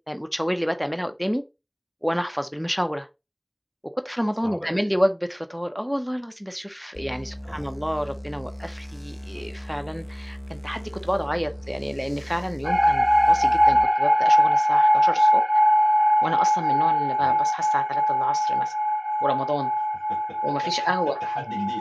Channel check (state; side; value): identical; both; correlation 1.00